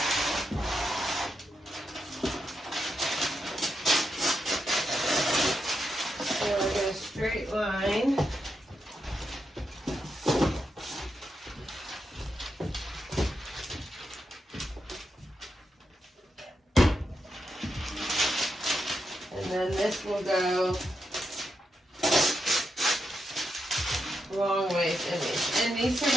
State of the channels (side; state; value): both; normal; correlation 0.85